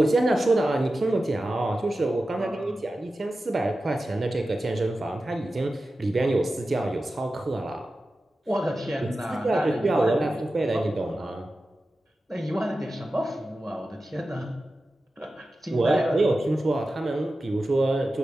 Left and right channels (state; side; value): normal; both; correlation 0.93